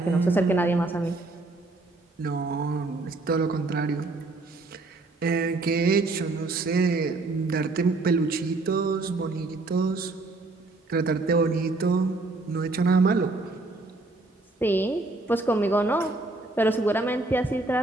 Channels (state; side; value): quieter; left; 3.2 dB